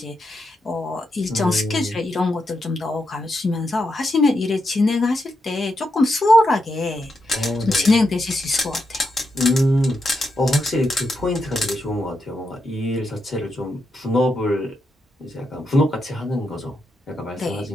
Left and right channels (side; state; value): both; normal; correlation 0.84